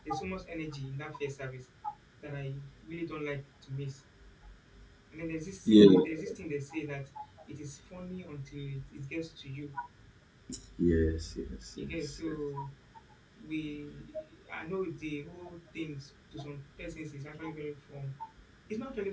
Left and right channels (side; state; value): both; identical; correlation 1.00